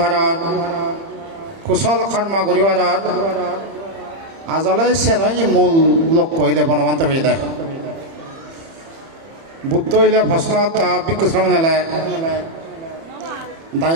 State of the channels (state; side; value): late; left; 30 ms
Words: হার কুশল কর্ম ঘুরি হার আজলৈ চেনই মূল লক্ষ্য হইলে বনবন্ত হয়ে দেয় বুদ্ধ হইলে প্রশ্ন ভিক্ষু সামনে